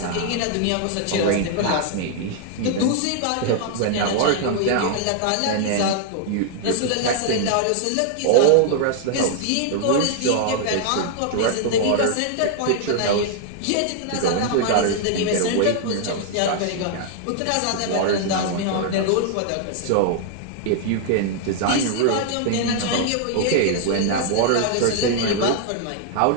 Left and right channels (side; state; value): both; different; correlation 0.00